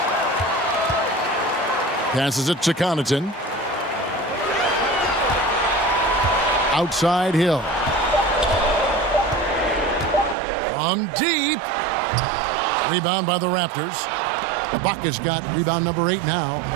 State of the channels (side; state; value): left; drops out; at 10.4 s